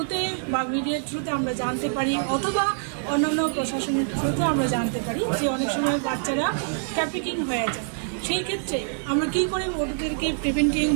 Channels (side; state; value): left; silent; digital silence